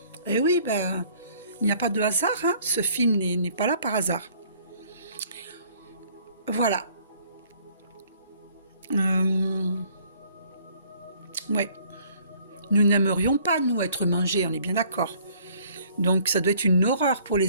Eh oui, il n'y a pas de hasard. Hein. Ce film n'est pas là par hasard. Voilà. Ouais. Nous n'aimerions pas, nous, être mangés, on est bien d'accord. Donc ça doit être une horreur pour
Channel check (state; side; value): inverted; both; correlation -0.58